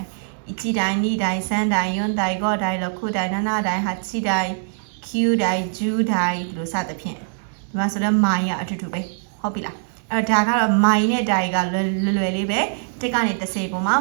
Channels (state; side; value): silent; left; digital silence